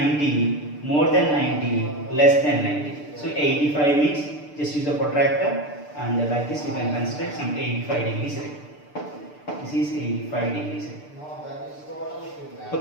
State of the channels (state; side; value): late; right; 6.8 ms